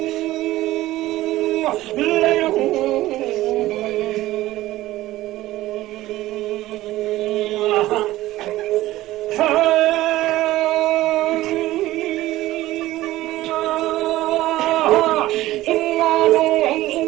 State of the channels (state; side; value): quieter; left; 16.3 dB